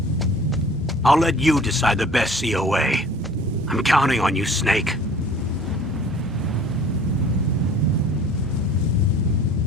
I'll let you decide the best COA. I'm counting on you, Snake.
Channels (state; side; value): normal; both; correlation 0.47